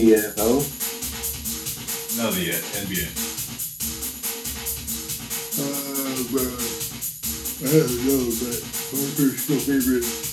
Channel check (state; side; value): identical; both; correlation 1.00